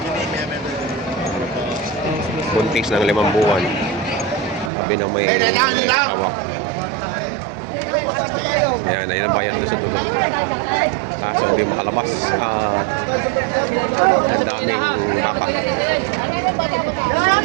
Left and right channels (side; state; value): left; drops out; at 4.7 s